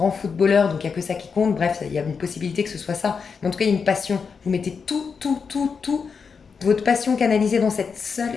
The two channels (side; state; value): right; quieter; 5.7 dB